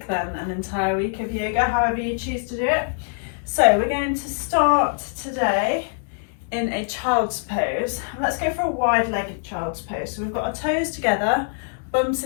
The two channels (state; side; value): silent; right; 63 dB below the other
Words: then an entire week of yoga, however you choose to do it. So we're going to start today in a child's pose. Let's go for a wide-legged child's pose. So we've got our toes together, bum